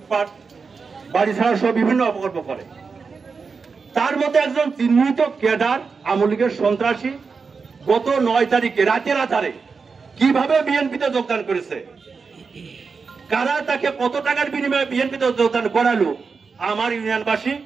বাড়ি ছাড়া সহ বিভিন্ন অপকর্ম করে। তার মধ্যে একজন চিহ্নিত ক্যাডার আওয়ামী লীগের সন্ত্রাসী গত ৯ তারিখে রাতের আধারে কিভাবে বিএনপিতে যোগদান করেছে, কারা তাকে কত টাকার বিনিময়ে বিএনপিতে যোগদান করালো, আমার ইউনিয়নবাসী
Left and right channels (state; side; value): quieter; left; 5.0 dB